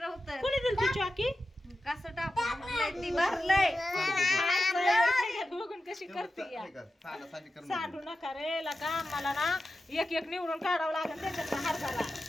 कोणी दिली ती चॉकी. कसं टाकून ती भरलंय. बघून कशी करते या. सांडी कर सांडू नका रे लका. मला ना एक एक निवडून काढावं लागेल त्याच्यात हरभरा.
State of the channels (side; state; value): both; normal; correlation 0.92